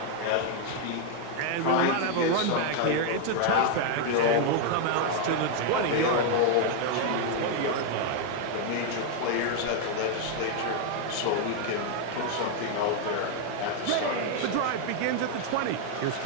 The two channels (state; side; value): different; both; correlation 0.00